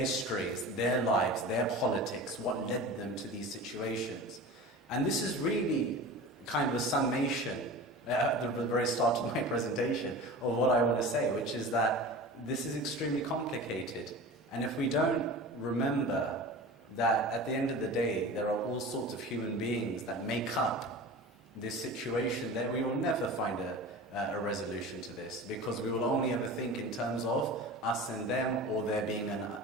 their lives, their politics, what led them to these situations. And this is really kind of a summation at the very start of my presentation of what I want to say, which is that this is extremely complicated. And if we don't remember that at the end of the day, there are all sorts of human beings that make up this situation, then we will never find a resolution to this, because we will only ever think in terms of us and them, or there being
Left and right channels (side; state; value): both; normal; correlation 0.34